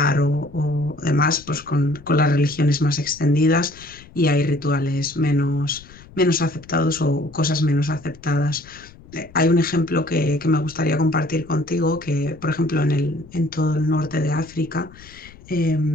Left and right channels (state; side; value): noise; left; rumble, 21 dB below the sound